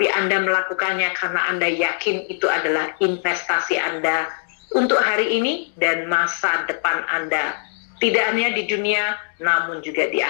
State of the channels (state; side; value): silent; right; 58 dB below the other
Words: Anda melakukannya karena Anda yakin itu adalah investasi Anda untuk hari ini dan masa depan Anda, tidak hanya di dunia namun juga di